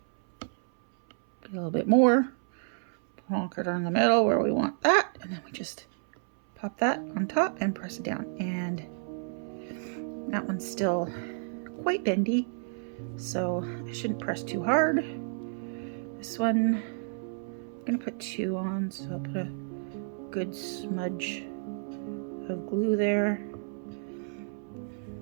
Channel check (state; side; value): silent; left; 58 dB below the other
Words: get a little bit more, plonk it on the middle where we want that, and then we just pop that on top and press it down. And that one's still quite bendy, so I shouldn't press too hard. This one, I'm gonna put 2 on, so I'll put a good smudge of glue there.